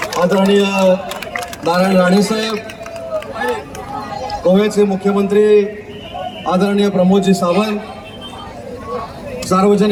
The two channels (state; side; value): identical; both; correlation 1.00